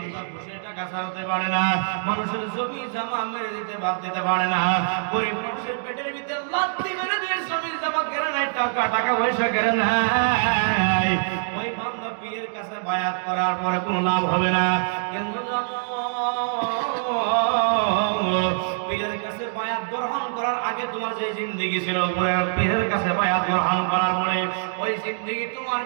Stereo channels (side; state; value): left; silent; digital silence